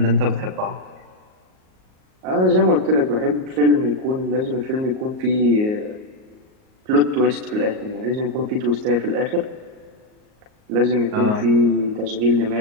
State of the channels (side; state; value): left; late; 38 ms